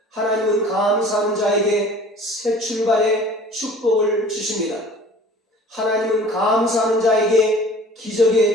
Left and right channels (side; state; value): both; normal; correlation 0.46